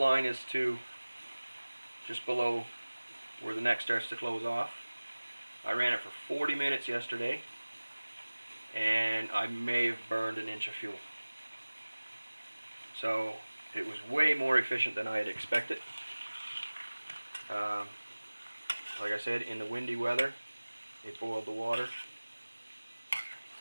is to just below where the neck starts to close off. I ran it for 40 minutes yesterday, and I may have burned an inch of fuel. So it was way more efficient than I had expected. Like I said, in the windy weather, it boiled the water.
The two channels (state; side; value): inverted; both; correlation -1.00